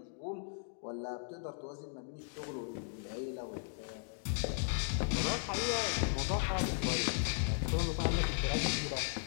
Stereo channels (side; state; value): right; silent; digital silence